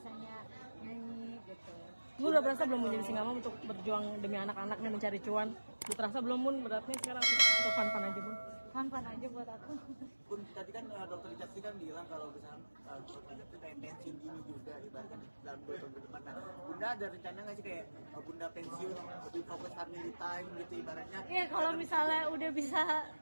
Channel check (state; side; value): inverted; both; correlation -1.00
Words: nyanyi gitu. Lu udah berasa belum menjadi singa mom untuk berjuang demi anak-anak nih mencari cuan? Udah terasa belum, Bun, beratnya sekarang atau fun-fun aja, Bun? Fun-fun aja buat aku. Bun, tadi kan dokter Jati kan bilang kalau misalnya dokter Jati pengen pensiun dini juga ibaratkan dalam 2 tahun ke depan. Nah, Bunda ada rencana nggak sih kayak Bunda pensiun lebih fokus family time gitu ibaratnya? Iya, kalau misalnya udah bisa